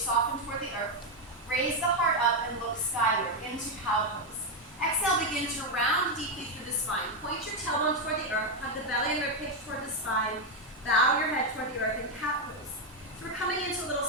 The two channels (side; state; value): both; normal; correlation 0.04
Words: toward the earth. Raise the heart up and look skyward into cow pose. Exhale, begin to round deeply through the spine. Point your tailbone toward the earth, hug the belly and ribcage toward the spine. Bow your head toward the earth in cat pose. So we're coming into a little